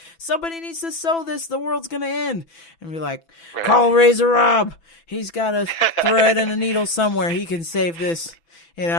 somebody needs to sew this, the world's going to end. And be like, call Razor Rob. He's got a thread and a needle somewhere. He can save this,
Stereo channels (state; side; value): late; right; 6.0 ms